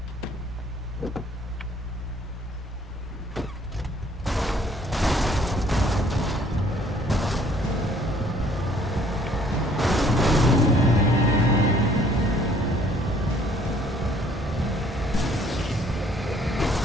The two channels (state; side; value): normal; both; correlation 0.60